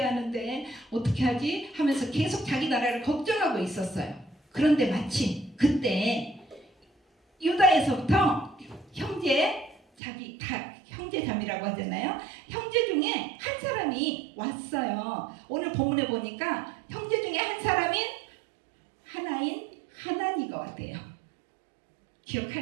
하는데 어떻게 하지? 하면서 계속 자기 나라를 걱정하고 있었어요. 그런데 마침 그때 유다에서부터 형제자매라고 하잖아요. 형제 중에 한 사람이 왔어요. 오늘 본문에 보니까 형제 중에 한 사람인 하나인 하나니가 왔대요.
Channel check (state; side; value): drops out; left; at 9.8 s